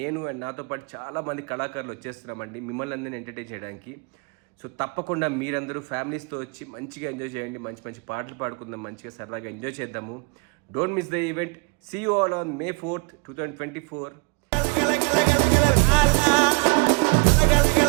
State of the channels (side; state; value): left; quieter; 30.0 dB